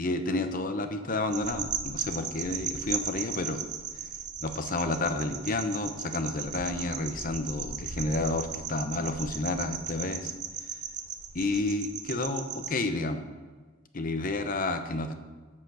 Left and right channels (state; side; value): normal; both; correlation 0.32